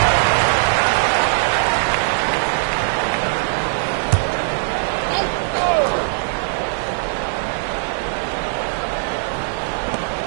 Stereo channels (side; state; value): left; silent; 66 dB below the other